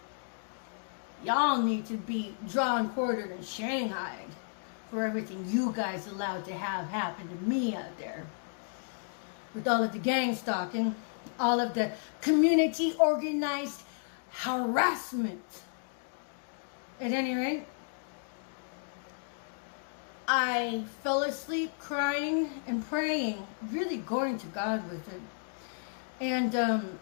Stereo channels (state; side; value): silent; right; digital silence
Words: y'all need to be drawn, quartered, and shanghaied for everything you guys allowed to have happen to me out there. With all of the gang stalking, all of the community organized harassment. At any rate, I fell asleep crying and praying, really going to God with it. And